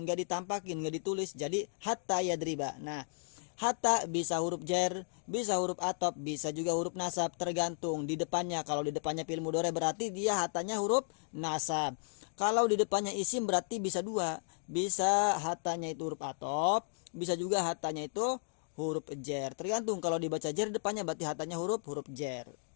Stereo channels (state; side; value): silent; right; digital silence